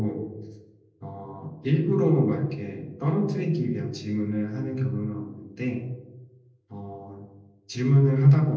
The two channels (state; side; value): identical; both; correlation 1.00